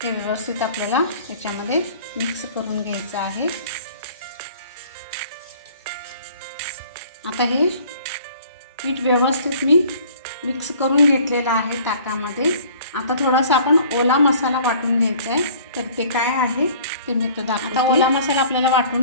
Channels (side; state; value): both; inverted; correlation -0.51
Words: हे व्यवस्थित आपल्याला याच्यामध्ये मिक्स करून घ्यायचं आहे। आता हे पीठ व्यवस्थित मी मिक्स करून घेतलेला आहे ताकामध्ये। आता थोडासा आपण ओला मसाला वाटून घ्यायचा आहे, तर ते काय आहे ते मी तो दाखवते। आता ओला मसाला आपल्याला वाटून